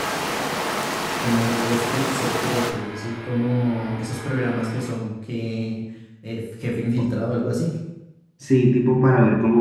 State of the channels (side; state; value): both; identical; correlation 1.00